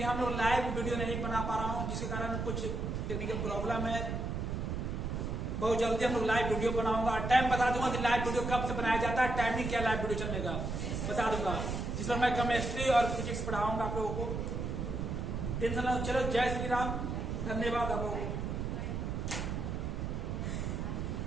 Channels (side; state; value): right; noise; rumble, 2 dB below the sound